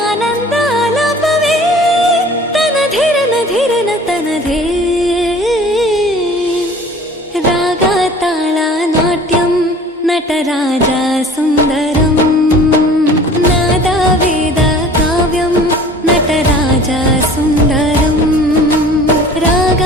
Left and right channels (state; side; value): normal; both; correlation 0.46